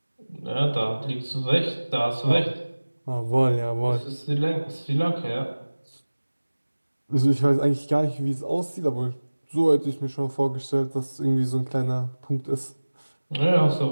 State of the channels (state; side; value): inverted; both; correlation -1.00